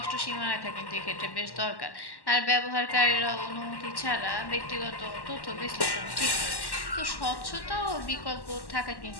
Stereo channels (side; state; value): right; late; 1.1 ms